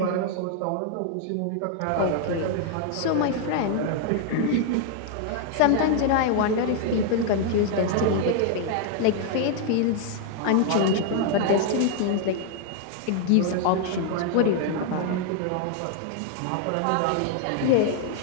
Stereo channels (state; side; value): different; both; correlation 0.00